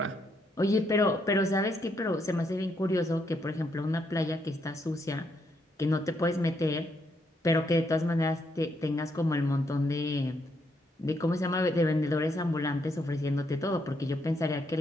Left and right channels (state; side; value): normal; both; correlation 0.76